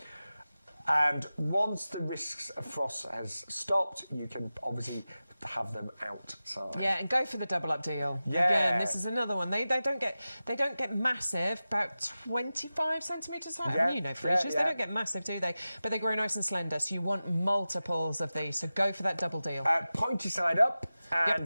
And once the risks of frost has stopped, you can obviously have them outside. Yeah, and go for the double up deal. Yeah. Again, this is another one. They don't get massive, about 25 centimetres high. Yeah. I mean, you know, freesias, they don't get massive, do they? But they grow nice and slender, so you want multiples of these. So go for that double deal. Pointy side up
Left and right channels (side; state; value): both; inverted; correlation -0.95